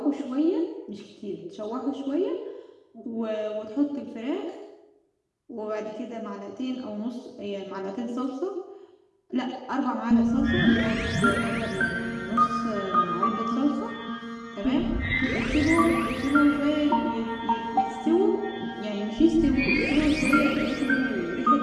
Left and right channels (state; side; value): identical; both; correlation 1.00